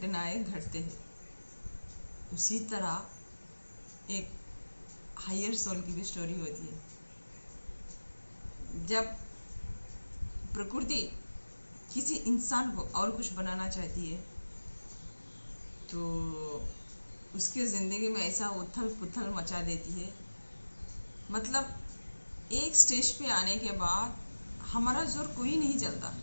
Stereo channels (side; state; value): both; inverted; correlation -1.00